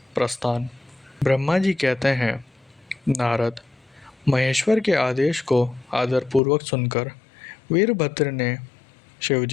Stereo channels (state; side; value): drops out; right; at 6.4 s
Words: प्रस्थान। ब्रह्मा जी कहते हैं, नारद, महेश्वर के आदेश को आदरपूर्वक सुनकर वीरभद्र ने